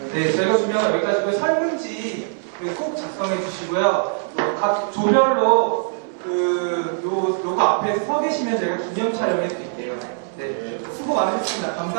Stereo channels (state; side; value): silent; left; 64 dB below the other